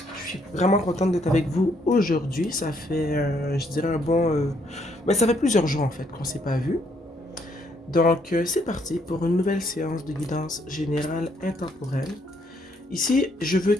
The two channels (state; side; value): normal; both; correlation 0.70